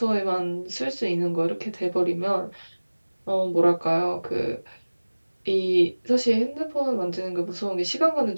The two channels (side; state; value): both; inverted; correlation -1.00